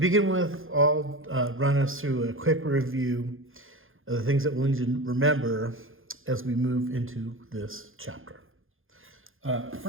with, I'll run us through a quick review of the things that we'll need to remember as we move into this chapter.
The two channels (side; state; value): left; late; 0.59 ms